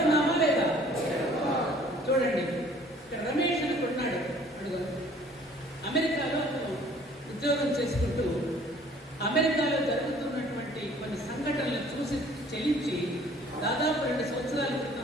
లేదా? చూడండి, ఇక్కడ రమేష్ అని కొన్నాడు. అడుగు అమెరికాలో ఉద్యోగం చేసుకుంటూ అమెరికాలో జరుగుతున్నటువంటి కొన్ని సంఘటనలు చూసి చెల్లించి దాదాపు 2 సంవత్సరాల క్రితం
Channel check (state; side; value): normal; both; correlation 0.55